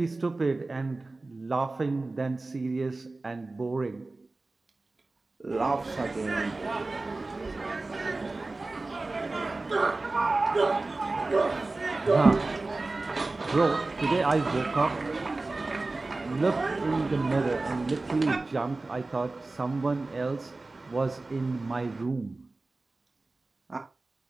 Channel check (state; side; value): quieter; left; 3.3 dB